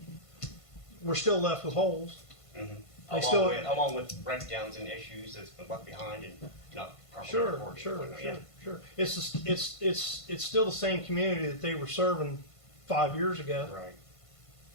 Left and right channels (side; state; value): right; late; 1.5 ms